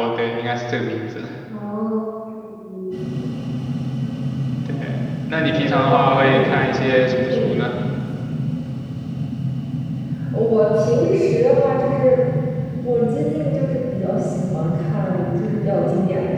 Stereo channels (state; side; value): identical; both; correlation 1.00